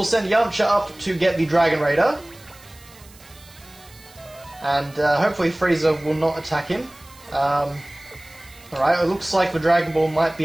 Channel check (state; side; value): noise; right; hiss, 24 dB below the sound